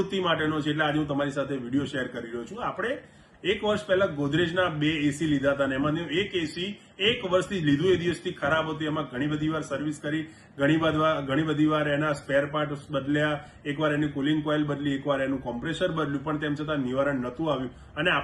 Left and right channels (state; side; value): identical; both; correlation 1.00